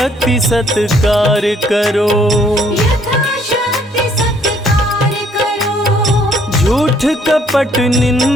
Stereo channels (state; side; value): normal; both; correlation 0.64